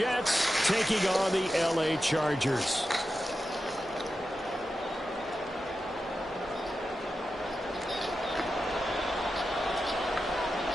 taking on the LA Chargers.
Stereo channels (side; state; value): both; normal; correlation 0.91